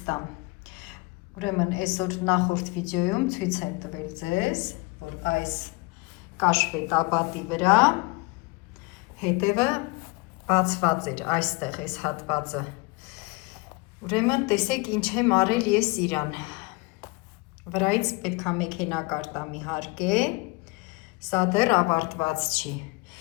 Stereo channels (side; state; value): right; quieter; 25.4 dB